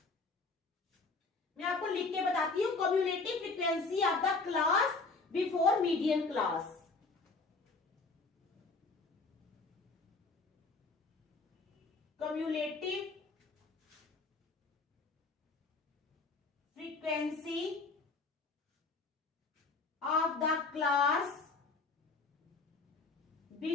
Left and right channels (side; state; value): right; quieter; 3.9 dB